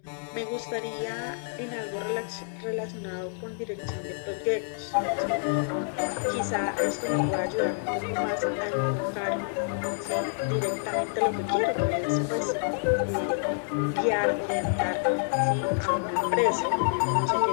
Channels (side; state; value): right; silent; digital silence